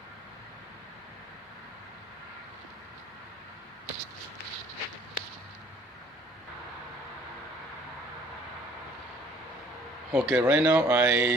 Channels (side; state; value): both; normal; correlation 0.56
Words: Okay, right now